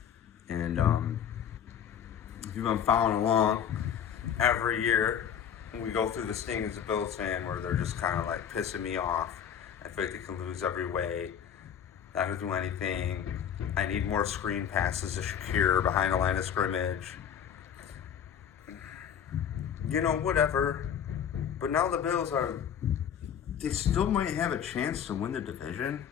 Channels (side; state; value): right; quieter; 8.6 dB